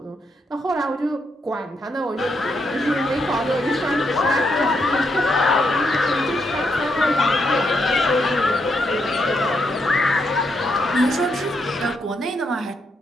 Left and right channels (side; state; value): both; normal; correlation 0.79